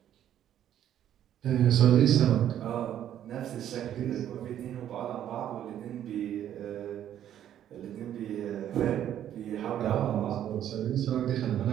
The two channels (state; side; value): quieter; left; 10.8 dB